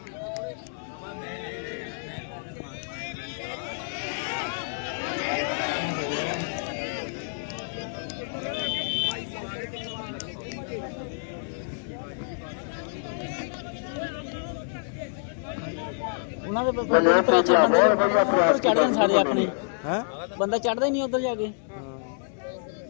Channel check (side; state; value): right; silent; digital silence